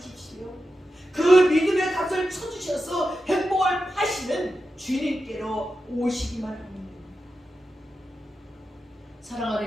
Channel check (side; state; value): both; normal; correlation 0.90